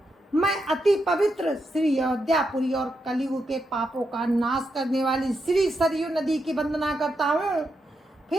अति पवित्र श्री अयोध्यापुरी और कलयुग के पापों का नाश करने वाली श्री सरयू नदी की वंदना करता हूँ।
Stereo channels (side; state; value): both; normal; correlation 0.84